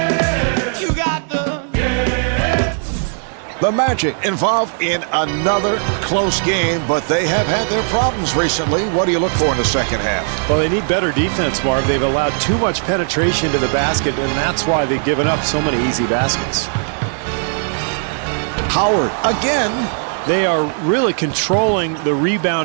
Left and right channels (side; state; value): left; silent; digital silence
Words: The Magic involved in another close game, but they have had their problems recently. What do you look for in the second half? Well, they need better defense, Marv. They've allowed too much penetration to the basket, and that's why they've given up so many easy baskets. Howard again. They are really controlling the